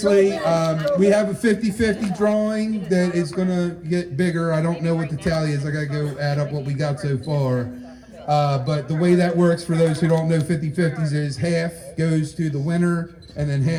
we have a 50-50 drawing that is going to get bigger. I don't know what the tally is. I got to go add up what we got so far. But the way that works, for those who don't know 50-50s, is half goes to the winner and then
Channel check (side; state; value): both; identical; correlation 1.00